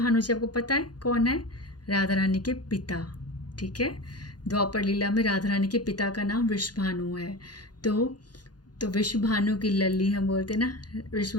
जी आपको पता है कौन है, राधा रानी के पिता, ठीक है, द्वापर लीला में राधा रानी के पिता का नाम वृषभानु है। तो वृषभानु की लल्ली हम बोलते ना,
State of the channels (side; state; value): right; late; 0.69 ms